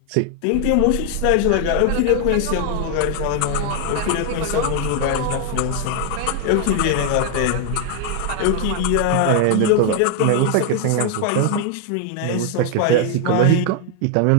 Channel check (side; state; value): both; different; correlation 0.00